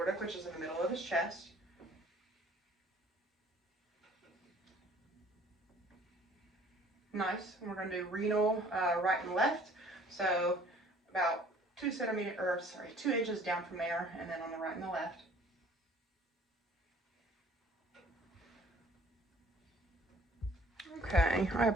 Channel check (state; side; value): normal; both; correlation 0.55